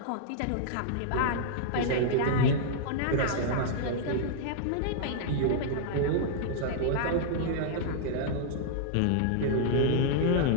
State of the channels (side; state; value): both; different; correlation -0.02